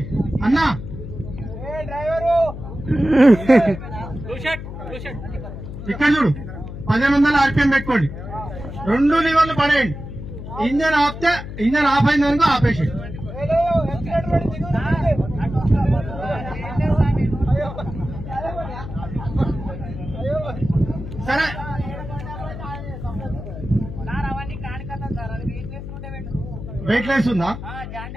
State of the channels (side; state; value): left; noise; hum, 10 dB below the sound